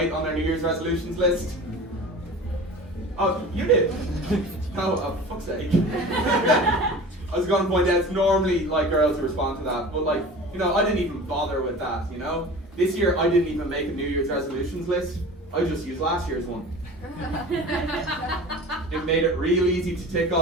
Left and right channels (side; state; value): both; normal; correlation 0.38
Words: on their New Year's resolutions list? Oh, you did? Oh, fuck's sake. I was going to point out, it's normally like girls who respond to that, but like, you know, I didn't even bother with that, you know? This year, I didn't even make a New Year's resolutions list. I just used last year's one. It made it real easy to tick